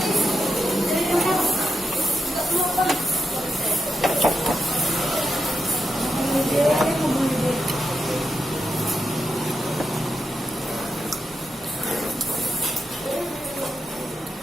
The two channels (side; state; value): both; normal; correlation 0.85